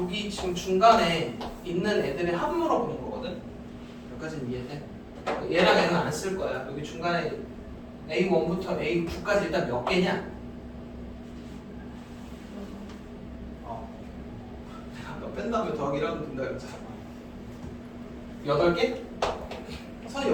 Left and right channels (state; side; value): identical; both; correlation 1.00